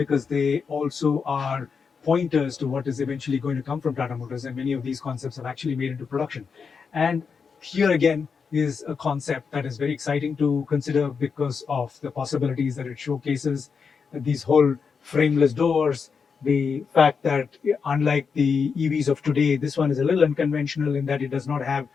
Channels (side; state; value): right; quieter; 5.8 dB